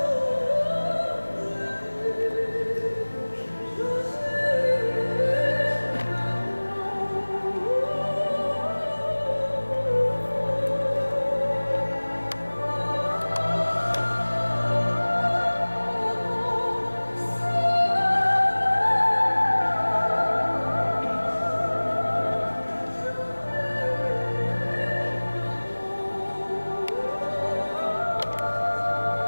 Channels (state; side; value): inverted; both; correlation -1.00